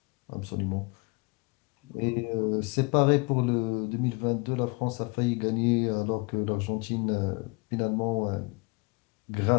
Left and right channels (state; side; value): quieter; right; 28.8 dB